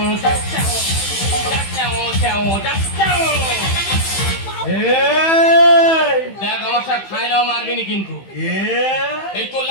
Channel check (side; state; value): right; late; 15 ms